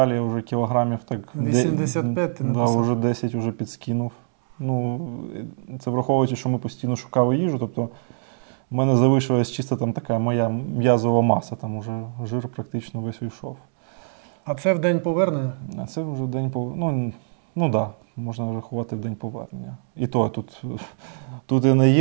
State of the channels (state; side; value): silent; left; digital silence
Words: вже кілограмів так... 85 ти написав. Да, вже 10 вже підскинув. Ну, це враховуючи, що ми постійно шукали їжу, тобто в мене залишилась чисто там така моя м'язова маса, там уже жир практично весь уйшов. А це в день повернення? А це вже день повернення. Ну да, можна рахувати в день повернення. І то тут і